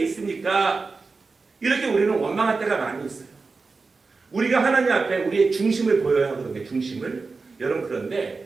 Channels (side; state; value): left; quieter; 4.2 dB